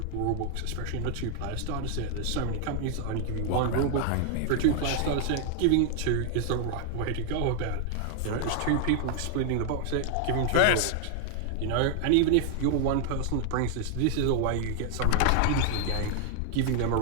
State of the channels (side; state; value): both; different; correlation 0.00